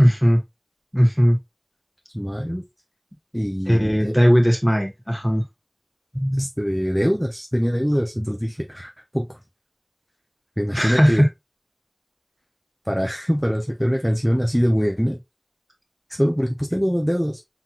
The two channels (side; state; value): both; identical; correlation 1.00